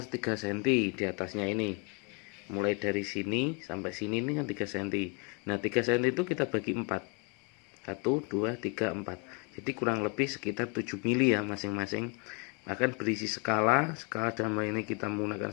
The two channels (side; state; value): right; quieter; 33.9 dB